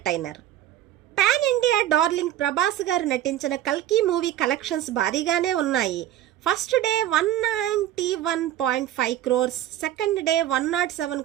Pan India darling Prabhas గారు నటించిన కల్కి మూవీ కలెక్షన్స్ భారీగానే ఉన్నాయి. First day 191.5 crores, second day 107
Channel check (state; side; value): quieter; left; 12.6 dB